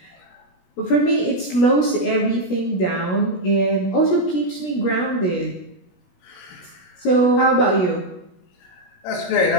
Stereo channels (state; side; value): late; right; 16 ms